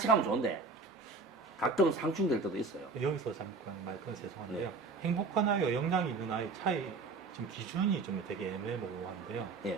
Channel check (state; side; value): quieter; left; 4.0 dB